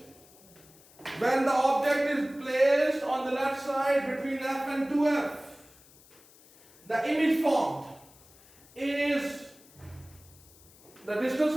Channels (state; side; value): noise; left; hiss, 25 dB below the sound